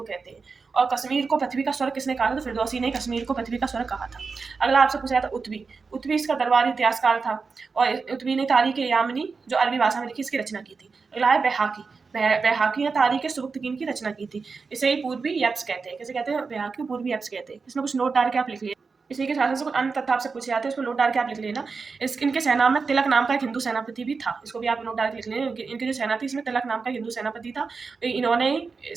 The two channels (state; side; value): quieter; left; 4.7 dB